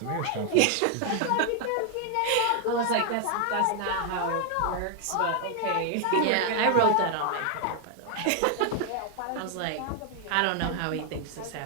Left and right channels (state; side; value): different; both; correlation 0.00